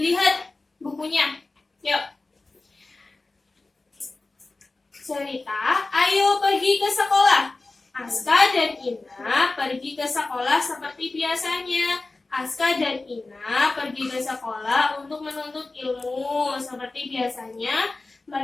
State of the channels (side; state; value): right; quieter; 3.4 dB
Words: bukunya. Yuk. Cerita, ayo pergi ke sekolah. Aska dan Ina pergi ke sekolah seperti biasanya. Aska dan Ina pergi ke sekolah untuk menuntut ilmu. Seperti biasanya,